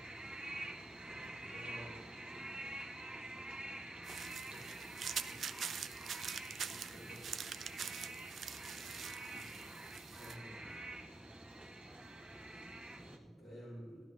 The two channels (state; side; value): quieter; left; 3.5 dB